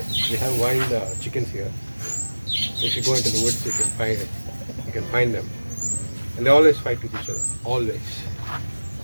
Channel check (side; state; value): both; inverted; correlation -1.00